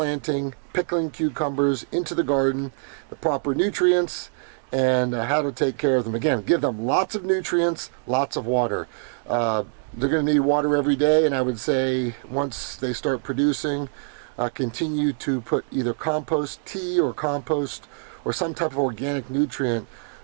pickling cucumbers into the garden, the proper nutrients, and how to take care of them. Again, give them lots of nutrients, lots of water. They're going to need water every day, and I would say once they start producing, continue to put either compost tea or compost or some type of organic nutrient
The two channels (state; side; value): silent; left; digital silence